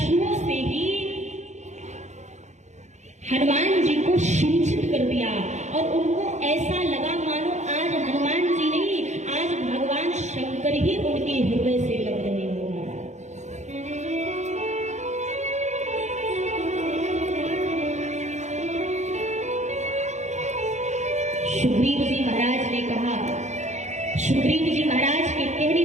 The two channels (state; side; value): late; left; 0.34 ms